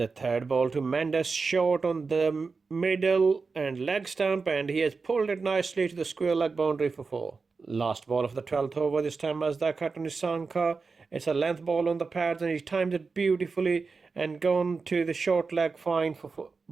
third ball to Mendes, short on the middle and leg stump, and he has pulled it nicely to the square leg boundary for 4. Last ball of the 12th over, this time Mazdaka to Nisanka. It's a length ball on the pads, and he's timed it beautifully and gone to the short leg fine for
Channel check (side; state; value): left; quieter; 4.5 dB